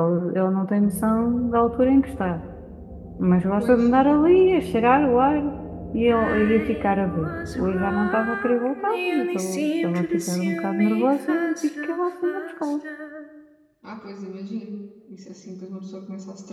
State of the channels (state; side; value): identical; both; correlation 1.00